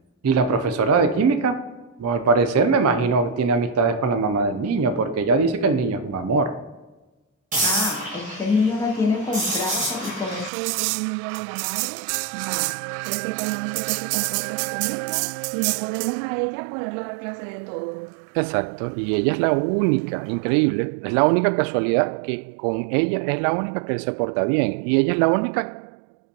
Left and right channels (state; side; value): drops out; left; at 10.5 s